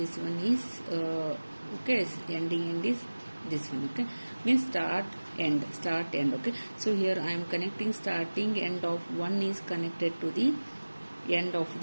one is okay, ending end is this one. Okay, means start end. Okay, so here I am connecting starting end of one is connected to the end of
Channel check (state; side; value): inverted; both; correlation -1.00